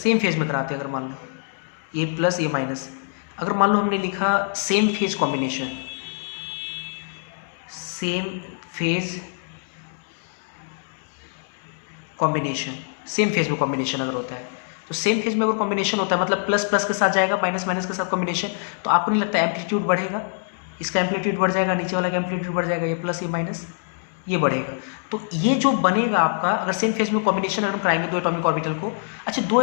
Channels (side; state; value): right; silent; digital silence